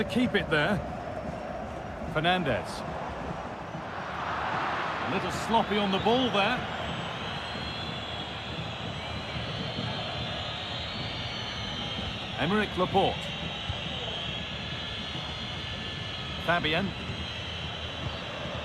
keep it there. Fernandez. A little sloppy on the ball there. Emerick Laporte. Fabian.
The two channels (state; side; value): identical; both; correlation 1.00